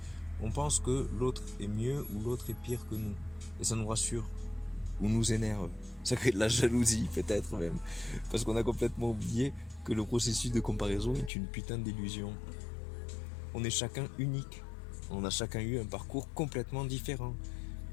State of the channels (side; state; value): right; drops out; at 11.3 s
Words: on pense que l'autre est mieux ou l'autre est pire que nous. Et ça nous rassure ou nous énerve. Ça crée de la jalousie peut-être même. Parce qu'on a complètement oublié que le processus de comparaison est une putain d'illusion. On est chacun unique. On a chacun eu un parcours complètement différent.